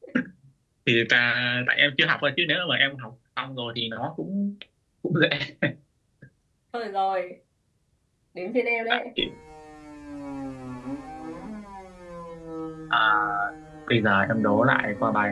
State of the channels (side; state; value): both; identical; correlation 1.00